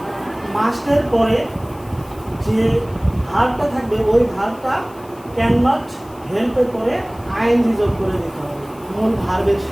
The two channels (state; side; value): noise; left; hiss, 26 dB below the sound